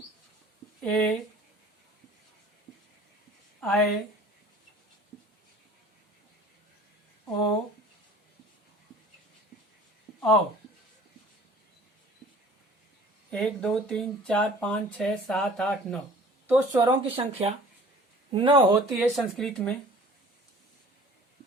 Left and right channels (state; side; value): normal; both; correlation 0.47